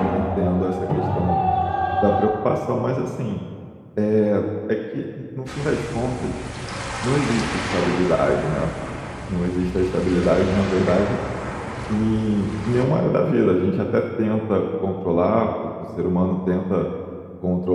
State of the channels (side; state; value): both; identical; correlation 1.00